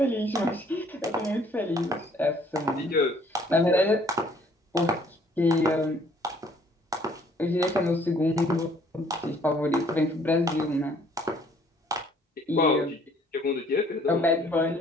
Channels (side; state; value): both; normal; correlation 0.60